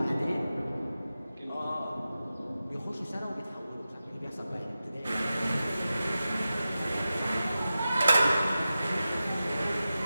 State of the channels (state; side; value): inverted; both; correlation -0.93